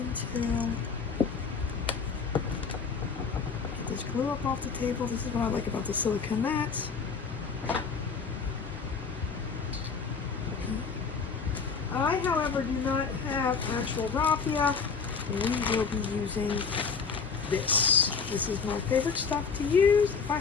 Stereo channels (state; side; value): quieter; right; 5.6 dB